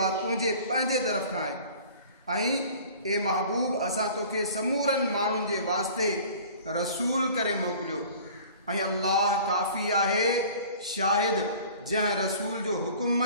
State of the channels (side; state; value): both; inverted; correlation -0.46